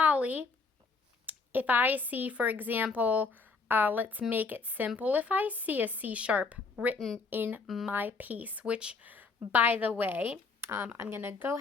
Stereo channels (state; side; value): quieter; right; 4.4 dB